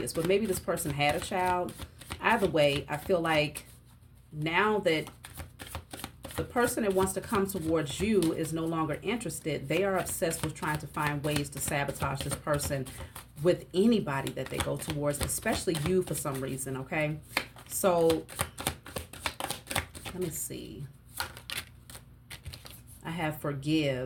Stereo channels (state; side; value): identical; both; correlation 1.00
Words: but maybe this person had a child. Either way, I feel like now that the person that wants to come towards you is no longer interested, they are obsessed with trying to find ways to sabotage this person with anybody that they go towards, especially you for some reason, okay? So, let me see. I have